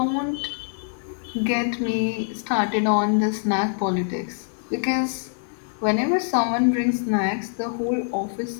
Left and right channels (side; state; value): right; silent; digital silence